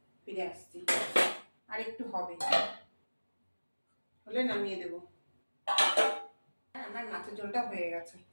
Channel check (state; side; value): inverted; both; correlation -1.00